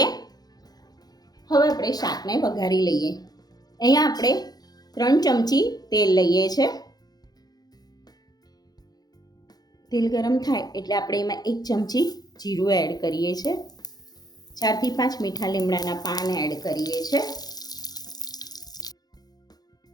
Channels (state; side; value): late; right; 0.19 ms